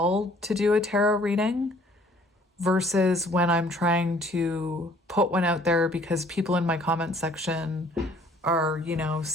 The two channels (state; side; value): normal; both; correlation 0.58